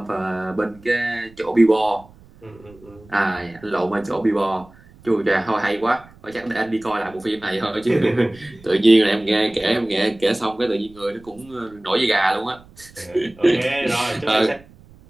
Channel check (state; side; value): noise; right; rumble, 25 dB below the sound